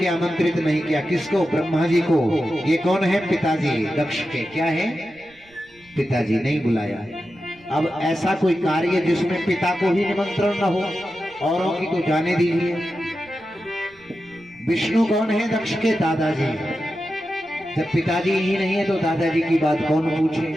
आमंत्रित नहीं किया। किसको? ब्रह्मा जी को। ये कौन है? पिताजी दक्ष के। क्या है? पिताजी। नहीं बुलाया। अब ऐसा कोई कार्य जिसमें पिता को ही निमंत्रण न हो, औरों की तो जाने दीजिए। विष्णु कौन है? दक्ष के दादाजी। जब पिताजी ही नहीं है तो दादाजी की बात कौन पूछे?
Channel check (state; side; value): noise; right; rumble, 30 dB below the sound